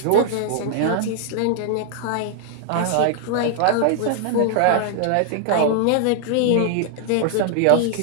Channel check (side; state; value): both; different; correlation -0.01